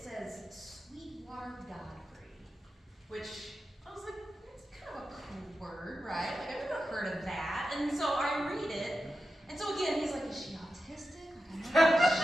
Sweetwater Godfrey, which I was like, it's kind of a cool word, right? Like I've never heard of that. And so I read it, and so again, he's like, is she autistic?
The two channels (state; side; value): normal; both; correlation 0.90